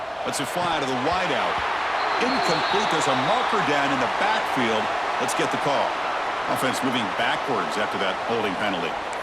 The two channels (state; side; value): identical; both; correlation 1.00